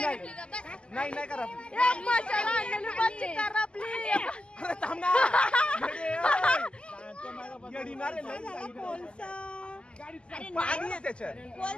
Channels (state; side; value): late; right; 0.052 ms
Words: नाही करपली एक मसाला आणलेली मच्छी करपली अरे थांब ना येडी ना रे, लई पाणी आहे त्याच्यात